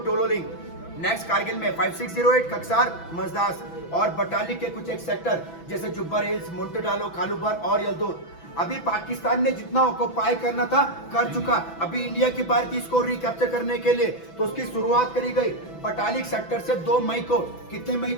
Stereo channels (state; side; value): late; right; 6.0 ms